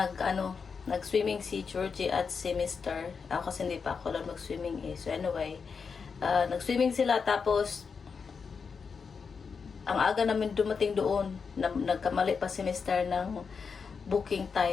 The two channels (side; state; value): right; quieter; 5.6 dB